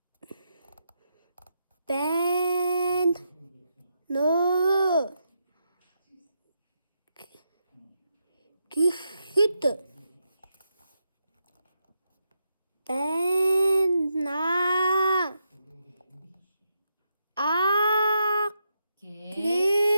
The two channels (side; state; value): both; inverted; correlation -0.83